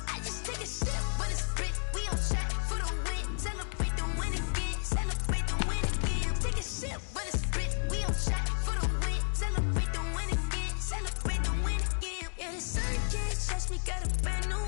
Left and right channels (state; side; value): silent; right; digital silence